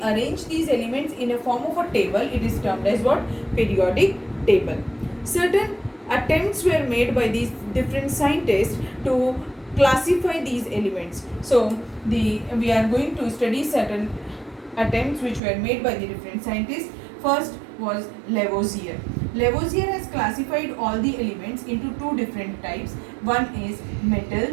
arrange these elements in a form of a table, it is termed as what? Periodic table. Certain attempts were made by these different scientists to classify these elements. So we are going to study certain attempts which were made by the different scientists. First was Lavoisier. Lavoisier has classified all the elements into two different types. One is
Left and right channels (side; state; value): left; drops out; at 15.4 s